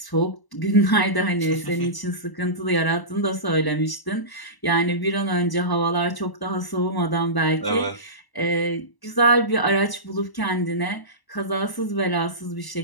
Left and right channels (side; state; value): right; late; 1.0 ms